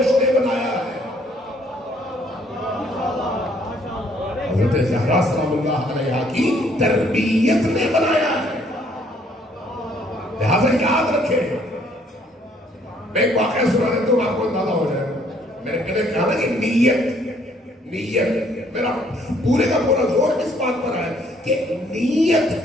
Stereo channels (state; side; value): normal; both; correlation 0.64